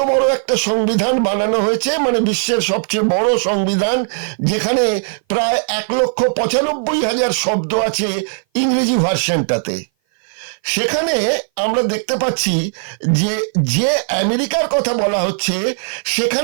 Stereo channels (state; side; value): silent; left; 58 dB below the other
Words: বড় একটা সংবিধান বানানো হয়েছে, মানে বিশ্বের সবচেয়ে বড় সংবিধান, যেখানে প্রায় 1,95,000 শব্দ আছে ইংরেজি ভার্সনটাতে। সেখানে আমরা দেখতে পাচ্ছি যে যে আমেরিকার কথা বলা হচ্ছে,